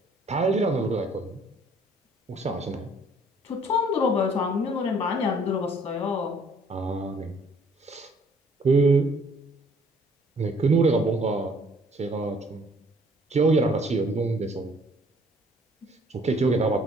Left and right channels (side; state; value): both; normal; correlation 0.60